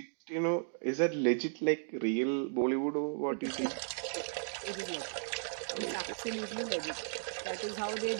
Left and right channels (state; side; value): silent; left; digital silence